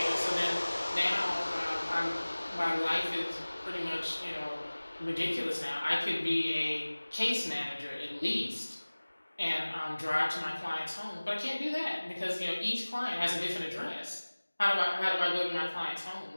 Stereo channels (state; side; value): inverted; both; correlation -1.00